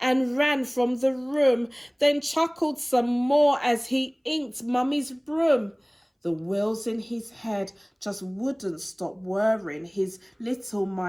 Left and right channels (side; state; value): both; identical; correlation 1.00